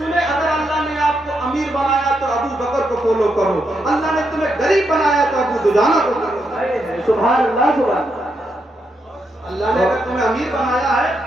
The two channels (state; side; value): normal; both; correlation 0.81